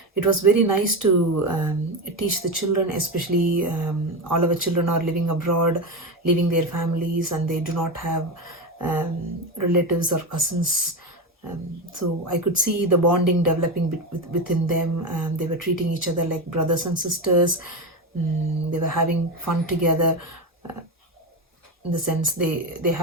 It was very nice to teach the children, especially all our children are living abroad, leaving their families, and they do not have relatives or cousins. So I could see the bonding developing within them. They were treating each other like brothers and sisters. They were having fun together. In the sense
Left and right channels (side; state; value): both; normal; correlation 0.17